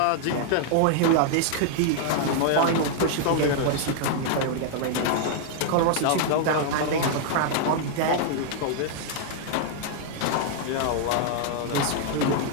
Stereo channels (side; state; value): both; different; correlation 0.00